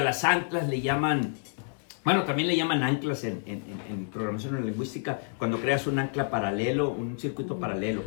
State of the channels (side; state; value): right; silent; 59 dB below the other